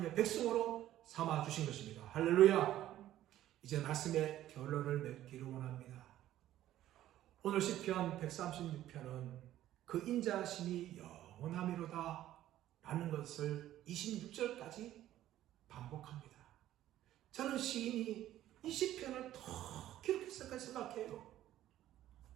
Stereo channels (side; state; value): left; quieter; 13.2 dB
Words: 백성으로 삼아 주신 것입니다. 할렐루야! 이제 말씀의 결론을 맺기를 원합니다. 오늘 시편 136편은 그 인자하심이 영원하미로다 라는 것을 26절까지 반복합니다. 저는 시인이 이 시편을 더 기록했을까 생각해요.